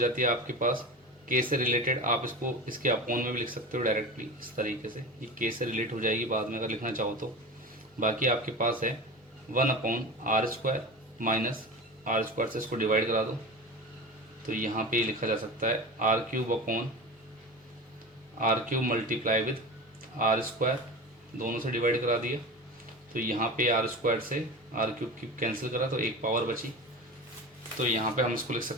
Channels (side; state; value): both; normal; correlation 0.30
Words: है आपके पास के से रिलेटेड, आप इसको इसके अपॉन में भी लिख सकते हो डायरेक्टली इस तरीके से, ये के से रिलेट हो जाएगी बाद में अगर लिखना चाहो तो। बाकी आपके पास है 1/r square minus are square से इसको डिवाइड करा दो, तो यहाँ पे लिखा जा सकता है R cube upon R cube multiply with R square, दोनों से डिवाइड करा दिया। तो यहाँ पे आर स्क्वायर से आर क्यूब की कैंसिल करा तो एक पावर बची। तो यहाँ पे हम इसको लिख